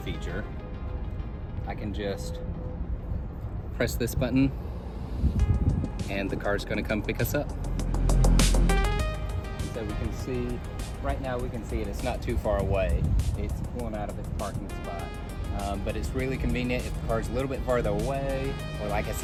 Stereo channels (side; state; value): both; identical; correlation 1.00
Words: I can just press this button and the car's gonna come pick us up. So we can see, right now we can see it, it's not too far away. It's pulling out of its parking spot. But it's really convenient if the car's a little bit farther away, or like I